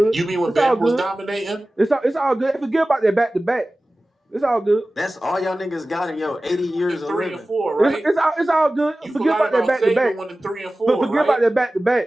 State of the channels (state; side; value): normal; both; correlation 0.97